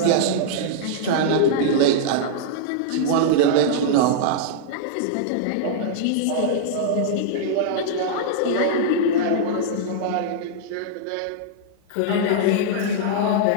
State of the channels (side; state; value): both; different; correlation -0.02